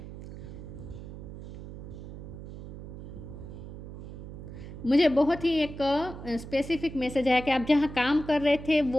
मुझे बहुत ही एक स्पेसिफिक मैसेज आया कि आप जहाँ काम कर रहे थे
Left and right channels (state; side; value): noise; right; hum, 11 dB below the sound